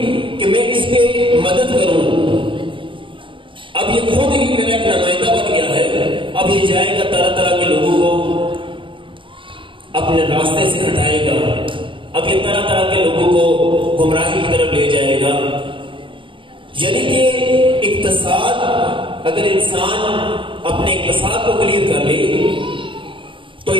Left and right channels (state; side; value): late; left; 0.25 ms